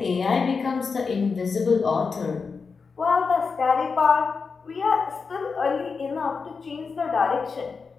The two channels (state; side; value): quieter; right; 5.0 dB